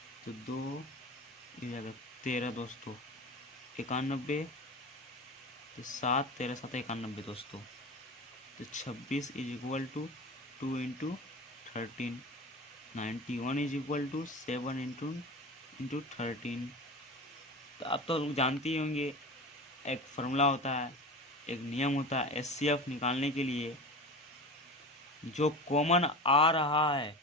तो 2 ये जाएगा 13 दोस्तों, 91 तो 7 13 7 91 दोस्तों, तो 26 is equal to 2 into 13, 91 is equal to 7 into 13। तो आप तो लोग जानते ही होंगे, एक फार्मूला होता है, एक नियम होता है एचसीएफ निकालने के लिए। जो कॉमन आ रहा है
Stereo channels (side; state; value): both; normal; correlation 0.31